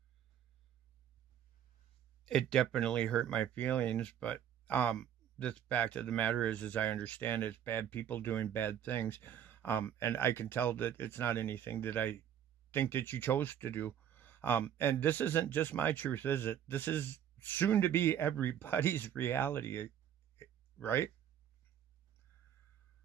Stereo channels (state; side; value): quieter; left; 9.7 dB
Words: It definitely hurt my feelings, but the fact of the matter is, as I understand it, it's bad people doing bad things. And I can tell that it's not anything that I think that you chose to do. And this isn't just my truth, is it? This is soon to be everybody's reality, right?